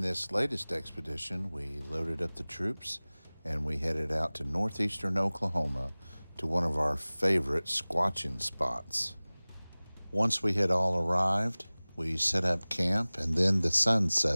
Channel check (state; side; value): inverted; both; correlation -1.00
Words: this latest expedition, we loaded up the troops and we headed out to northeastern Oklahoma to one of our favorite squatching spots. Once we had all arrived, we set up camp and then the sun